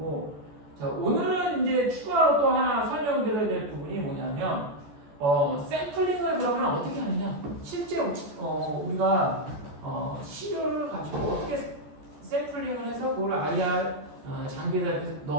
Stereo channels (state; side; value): late; left; 14 ms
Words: 자, 오늘은 이제 추가로 또 하나 설명드려야 될 부분이 뭐냐면, 샘플링을 그러면 어떻게 하느냐? 실제 우리가 시료를 가지고 어떻게 샘플링을 해서 그걸 IR 장비에다 이렇게